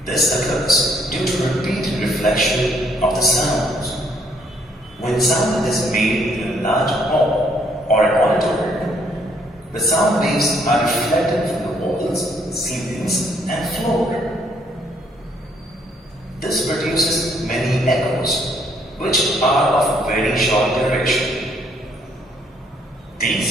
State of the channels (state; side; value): normal; both; correlation 0.68